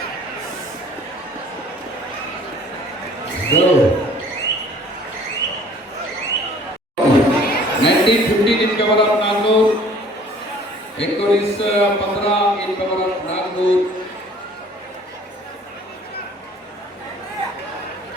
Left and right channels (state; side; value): normal; both; correlation 0.53